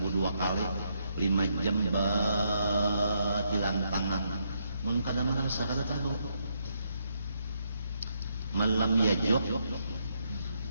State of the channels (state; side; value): inverted; both; correlation -0.77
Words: 2 kali 5 jam batilan tangan mun kada merasa kada tahu malam yajuk